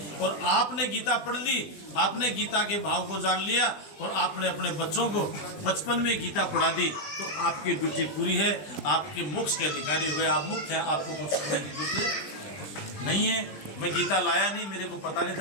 और आपने गीता पढ़ ली, आपने गीता के भाव को जान लिया और आपने अपने बच्चों को बचपन में गीता पढ़ा दी, तो आपकी ड्यूटी पूरी है, आपके मोक्ष के अधिकारी हो गए, आप मुक्त हैं, आपको कुछ करने की जरूरत नहीं है। मैं गीता लाया नहीं, मेरे को पता नहीं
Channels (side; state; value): right; late; 20 ms